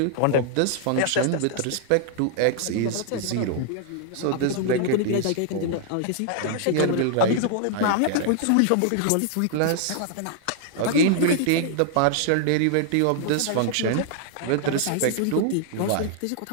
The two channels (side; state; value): both; different; correlation -0.01